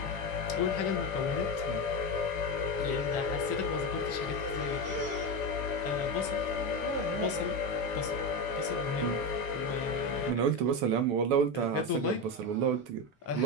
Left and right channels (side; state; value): both; normal; correlation 0.15